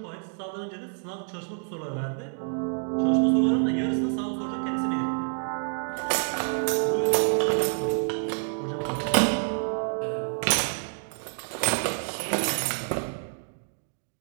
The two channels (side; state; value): left; silent; 60 dB below the other